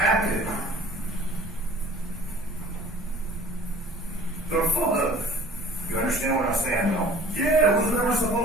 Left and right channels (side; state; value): both; normal; correlation 0.48